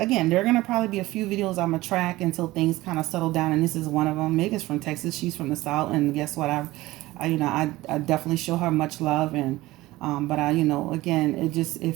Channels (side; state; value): left; quieter; 18.3 dB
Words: there are going to probably be a few videos I'm going to track until things kind of settle down. And this is one of them. Meg is from Texas. She's from the South. And guess what? I definitely show her much love. And, again, it